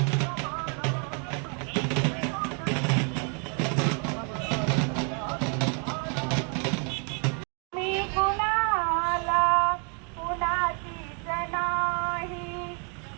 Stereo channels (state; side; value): quieter; left; 38.9 dB